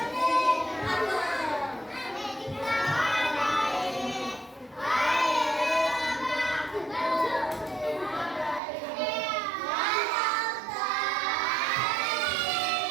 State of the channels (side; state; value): left; drops out; at 8.6 s